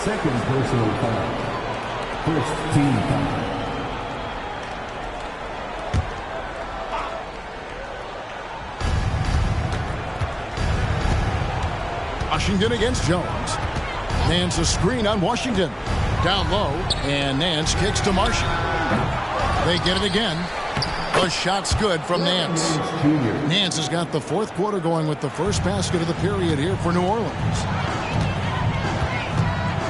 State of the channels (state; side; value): identical; both; correlation 1.00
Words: personal foul. First team foul. Washington against Jones. Nance a screen on Washington. Down low, and Nance kicks to Marshall. They get it again. The shot's good from Nance. Nance has got the 4th quarter going with the first basket of the period here for New Orleans.